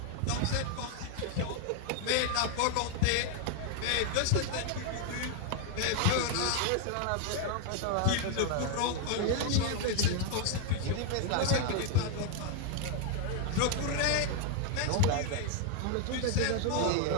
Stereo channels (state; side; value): different; both; correlation 0.00